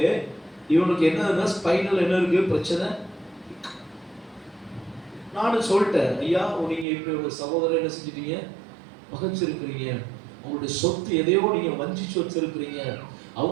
இவனுக்கு என்ன ஸ்பைனல் என்ன இருக்கு பிரச்சனை. நானும் சொல்லிட்டேன், ஐயா நீங்க இப்படி ஒரு சகோதரர் என்ன செஞ்சிட்டீங்க? பகைச்சிருக்கிறீங்க, உங்களுடைய சொத்து எதையோ நீங்க வஞ்சிச்சு வச்சிருக்கிறீங்க,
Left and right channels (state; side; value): drops out; left; at 6.9 s